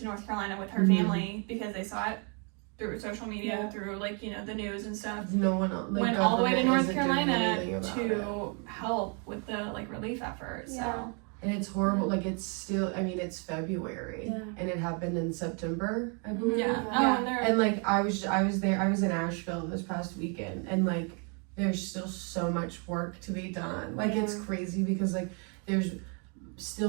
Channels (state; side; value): quieter; left; 37.0 dB